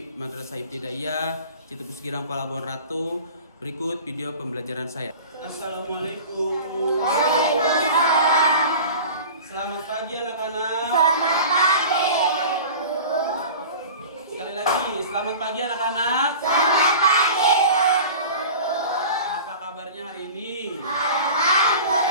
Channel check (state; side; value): inverted; both; correlation -0.37